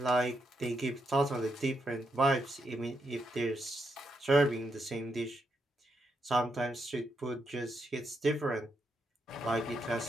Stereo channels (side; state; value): both; normal; correlation 0.81